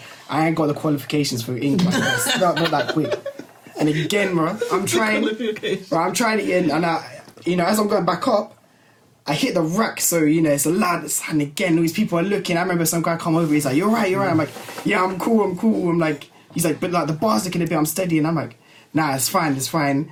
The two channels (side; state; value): both; identical; correlation 1.00